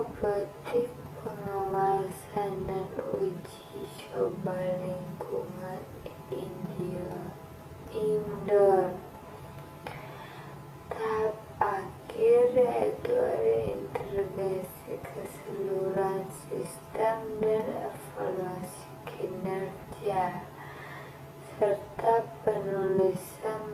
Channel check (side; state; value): both; identical; correlation 1.00